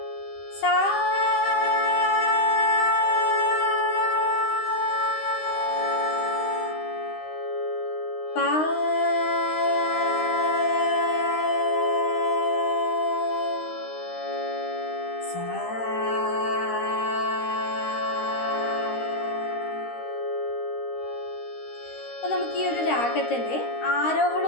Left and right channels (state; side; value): late; right; 13 ms